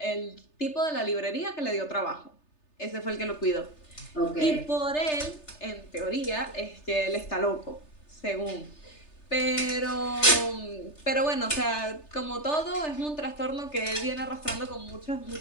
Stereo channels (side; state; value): right; late; 3.3 ms